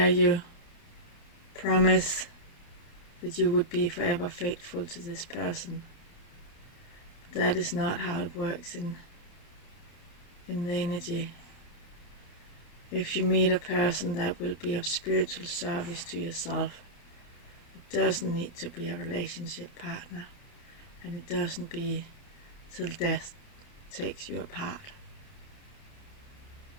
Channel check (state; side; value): late; right; 29 ms